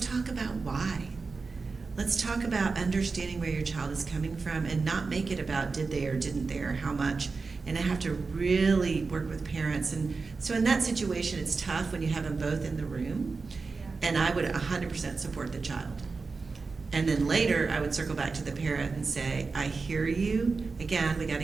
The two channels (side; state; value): left; quieter; 4.3 dB